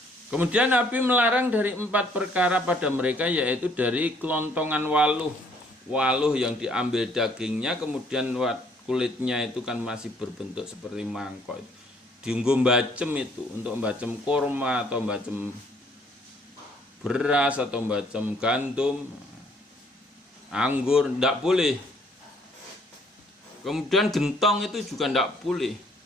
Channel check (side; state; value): both; normal; correlation 0.63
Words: Kemudian Nabi melarang dari 4 perkara pada mereka, yaitu dari kelontongan waluh. Waluh yang diambil dagingnya, kemudian kulitnya itu kan masih berbentuk seperti mangkok. Diunggu mbacem itu, untuk mbacem kurma atau mbacem beras atau mbacem gandum, anggur, tidak boleh. Kemudian gentong itu juga tidak boleh.